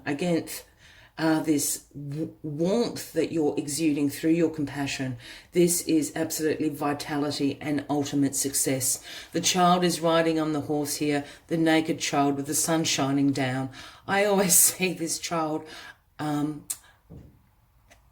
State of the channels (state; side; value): identical; both; correlation 1.00